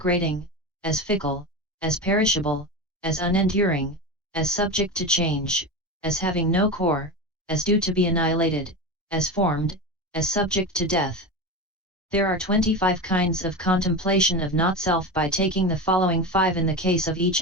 as fickle, as perishable, as unenduring, as subject to change, as having no core, as due to be annihilated, as formed, as subject to death. There are 25 kinds of contemplation of not-self by taking the following 5 in the case of each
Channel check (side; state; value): both; normal; correlation 0.23